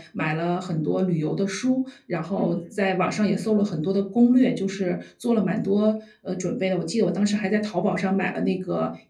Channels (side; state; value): both; identical; correlation 1.00